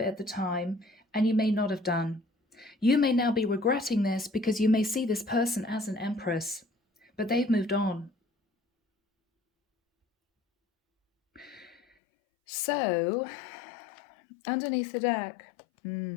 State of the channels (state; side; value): drops out; right; at 11.8 s